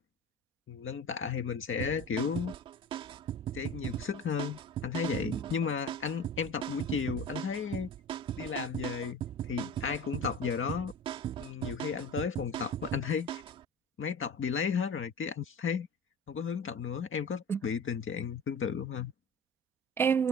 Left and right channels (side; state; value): both; normal; correlation 0.35